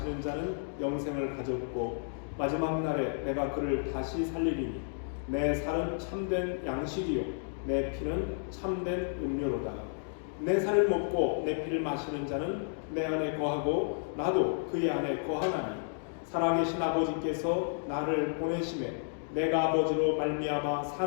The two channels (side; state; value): right; silent; digital silence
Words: 자는 영생을 가졌고 마지막 날에 내가 그를 다시 살리리니 내 살은 참된 양식이요 내 피는 참된 음료로다. 내 살을 먹고 내 피를 마시는 자는 내 안에 거하고 나도 그의 안에 거하나니 살아계신 아버지께서 나를 보내심에 내가 아버지로 말미암아